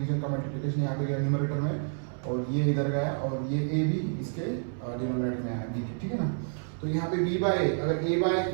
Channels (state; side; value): silent; left; 58 dB below the other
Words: का मल्टीप्लिकेशन यहाँ पे गया न्यूमरेटर में, और ये इधर गया, और ये a b इसके डिनोमिनेटर में आया b के, ठीक है ना. तो यहाँ पे b by a, अगर a by